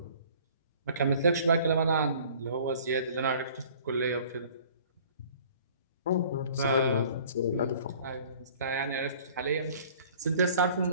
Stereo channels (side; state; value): both; inverted; correlation -0.51